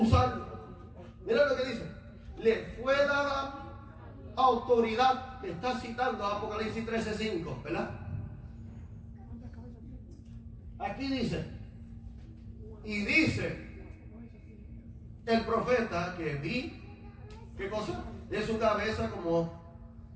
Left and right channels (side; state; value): both; identical; correlation 1.00